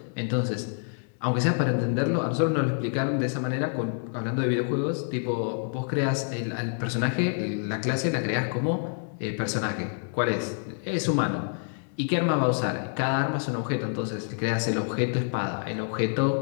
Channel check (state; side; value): silent; right; 60 dB below the other